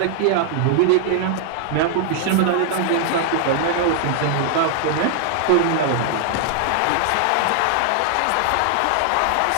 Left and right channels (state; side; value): different; both; correlation 0.00